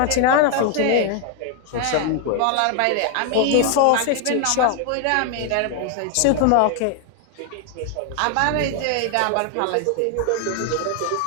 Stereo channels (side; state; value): both; different; correlation 0.00